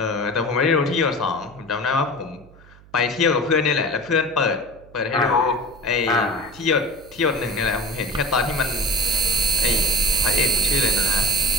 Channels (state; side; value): noise; right; hum, 24 dB below the sound